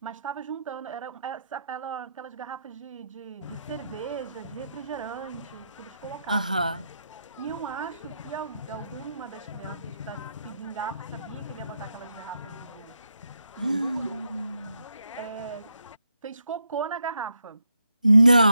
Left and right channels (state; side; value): inverted; both; correlation -0.82